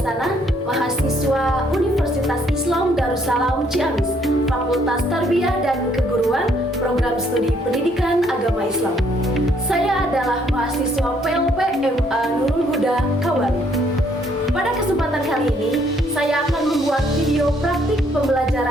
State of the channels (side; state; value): both; normal; correlation 0.67